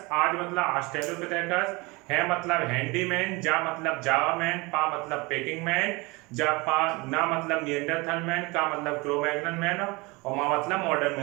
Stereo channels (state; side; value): quieter; left; 25.1 dB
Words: आज मतलब ऑस्ट्रेलोपिथेकस, है मतलब हैंडीमैन, जा मतलब जावामैन, पा मतलब पेकिंग मैन, ना मतलब निएंडरथल मैन, का मतलब क्रो-मैग्नन मैन और मा मतलब मॉडर्न